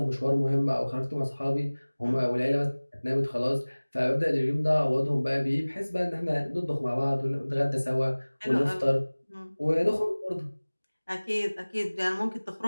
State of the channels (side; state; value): both; inverted; correlation -1.00